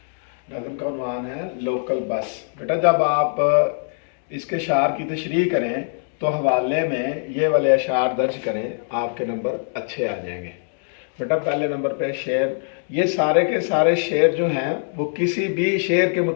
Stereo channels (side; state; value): right; silent; digital silence